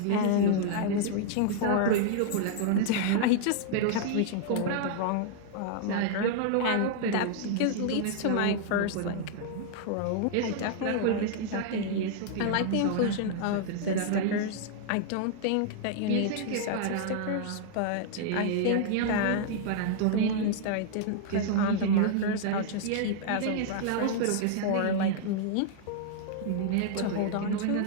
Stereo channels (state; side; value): different; both; correlation -0.01